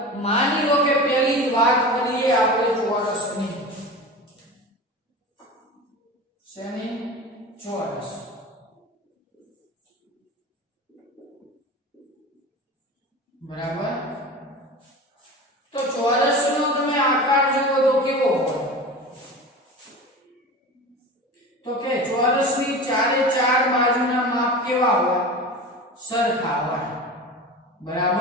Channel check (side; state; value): both; normal; correlation 0.32